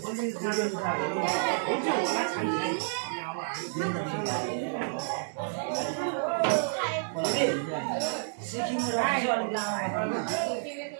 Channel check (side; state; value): left; silent; digital silence